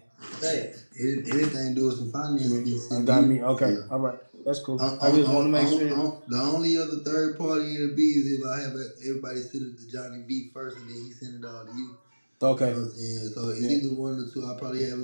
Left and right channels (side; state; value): both; inverted; correlation -1.00